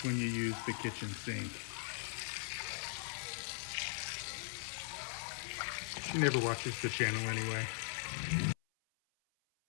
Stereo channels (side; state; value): right; silent; 51 dB below the other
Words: when you use the kitchen sink. She never watches the channel anyway.